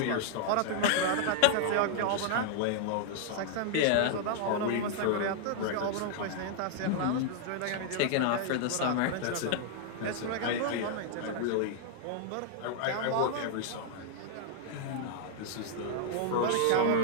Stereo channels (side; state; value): both; different; correlation -0.01